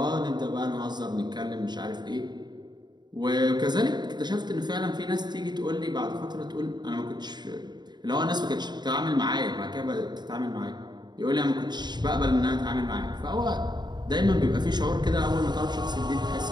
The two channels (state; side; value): late; left; 0.21 ms